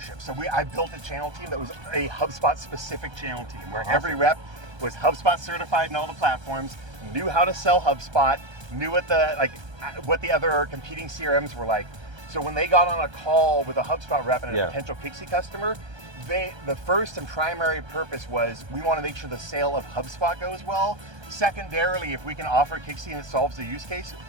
So I built a channel team that was a HubSpot specific channel team where every rep was HubSpot certified in all the platforms, knew how to sell HubSpot, knew what the other competing CRMs were like. So when they got on a call with a HubSpot rep and a potential Kixie customer, the first and primary purpose was, we want to make sure the sale of HubSpot goes well. Secondarily, if we can offer Kixie and it solves the use case,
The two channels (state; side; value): late; left; 1.3 ms